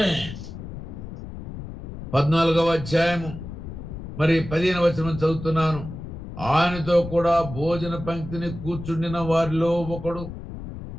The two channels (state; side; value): noise; left; rumble, 10 dB below the sound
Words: మరి 15వ వచనం చదువుతున్నాను. ఆయనతో కూడా భోజన పంక్తిని కూర్చుండిన వారిలో ఒకడు